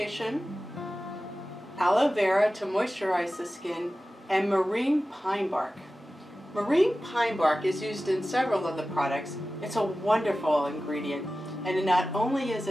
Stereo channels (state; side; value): normal; both; correlation 0.95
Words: aloe vera to moisturize the skin, and marine pine bark. Marine pine bark is used in several of the products. It's a wonderful ingredient, and it not only is